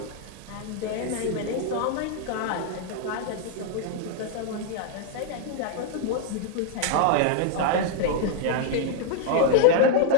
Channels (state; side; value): different; both; correlation 0.00